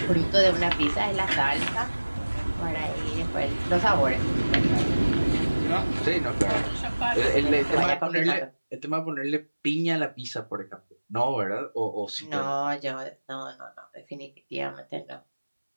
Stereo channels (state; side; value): inverted; both; correlation -1.00